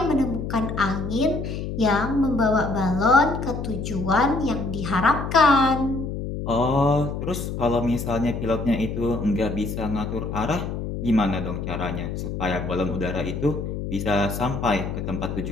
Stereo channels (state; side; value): noise; left; hum, 5 dB below the sound